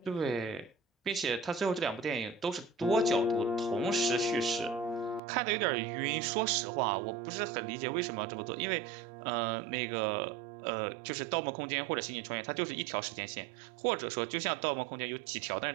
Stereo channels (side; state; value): left; drops out; at 5.2 s